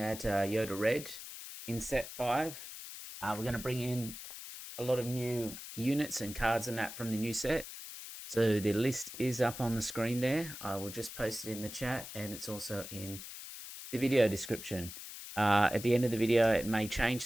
Yoda Red in set five. We're going to bring in a lot of new units and cards and that from the new set. So the list is up on the screen there. I will just post it in the chat, and it's also in the video description. At the end of the video, it may change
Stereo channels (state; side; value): noise; left; hiss, 11 dB below the sound